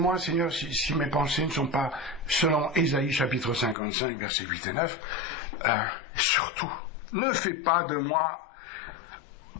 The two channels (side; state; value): right; drops out; at 3.8 s